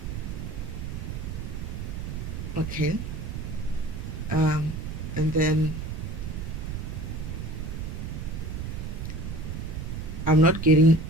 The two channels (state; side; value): noise; right; rumble, 5 dB below the sound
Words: Okay. And then I'm not getting